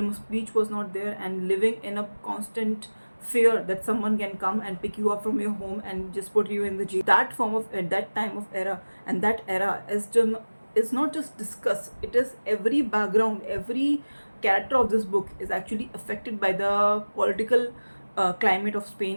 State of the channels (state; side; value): inverted; both; correlation -1.00